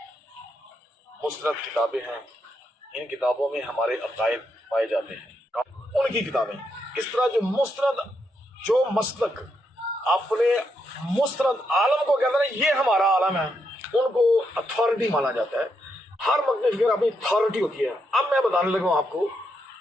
مستند کتابیں ہیں، ان کتابوں میں ہمارے عقائد پائے جاتے ہیں۔ ان کی کتابیں اس طرح جو مستند، جو مسلک اپنے مستند عالم کو کہتے ہیں یہ ہمارا عالم ہے، ان کو اتھارٹی مانا جاتا ہے۔ ہر مقام فکر اپنی اتھارٹی ہوتی ہے۔ اب میں بتانے لگا ہوں آپ کو،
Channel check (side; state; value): both; normal; correlation 0.81